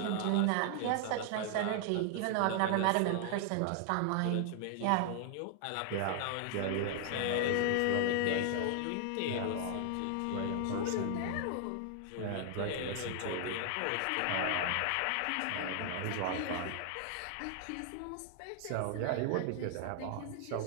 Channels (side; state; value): both; different; correlation 0.00